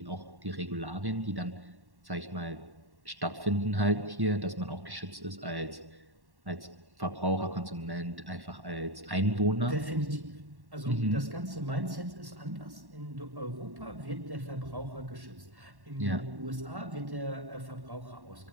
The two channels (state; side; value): late; left; 1.1 ms